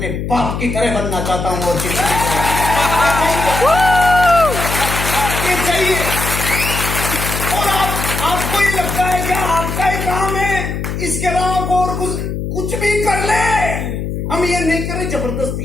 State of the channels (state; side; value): noise; left; hum, 4 dB below the sound